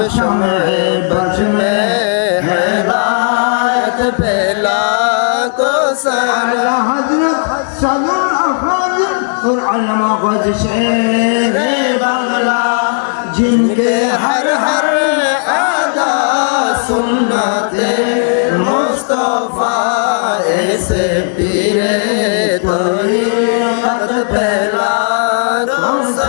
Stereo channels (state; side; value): silent; right; digital silence